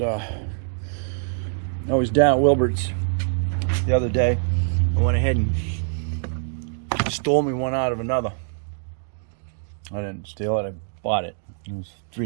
I was down at Wilbert's the other day. I went ahead and stole me one out of another. I didn't steal it, I bought it. It was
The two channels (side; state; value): left; silent; digital silence